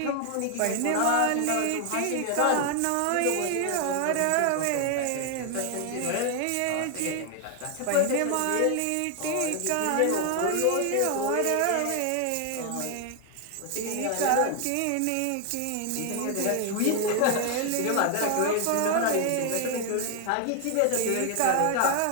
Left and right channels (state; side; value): different; both; correlation 0.00